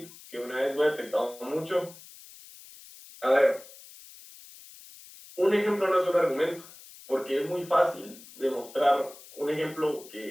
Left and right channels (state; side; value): noise; left; hiss, 19 dB below the sound